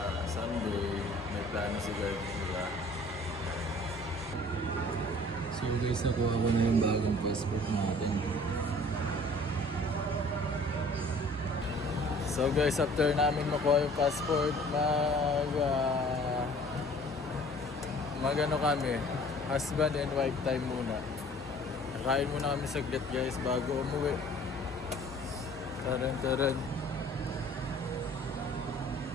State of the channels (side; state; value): both; normal; correlation 0.51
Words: Sunday may plano si God nila. So guys, nakuha ko na yung bagong passport natin. So guys, after namin makuha yung passport, mag-ano kami, husband and wife time muna. Kain muna kami saglit guys bago umuwi. Taran.